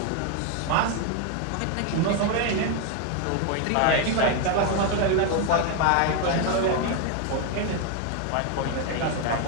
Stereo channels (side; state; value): both; different; correlation 0.01